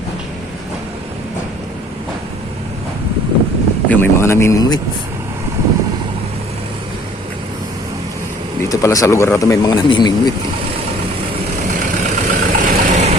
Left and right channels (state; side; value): normal; both; correlation 0.54